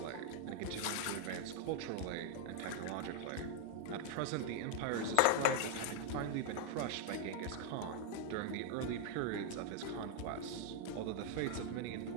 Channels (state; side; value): different; both; correlation 0.00